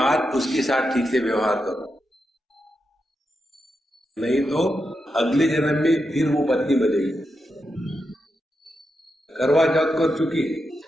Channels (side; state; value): both; normal; correlation 0.86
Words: उसके साथ ठीक से व्यवहार करो, नहीं तो अगले जन्म में फिर वो पत्नी बनेगी। करवा चौथ कर चुकी है,